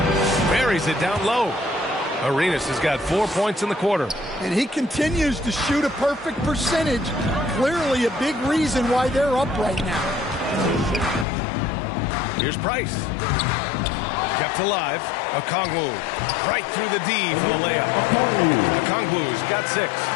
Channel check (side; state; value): right; drops out; at 11.2 s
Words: Buries it down low. Arenas has got 4 points in the quarter. And he continues to shoot a perfect percentage. Clearly a big reason why they're up right now. Here's Price. Kept alive. Okongwu. Right through the D for the layup. Okongwu's got 6.